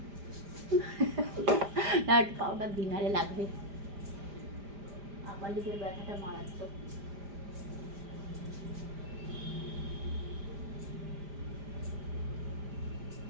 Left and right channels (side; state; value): left; late; 5.0 ms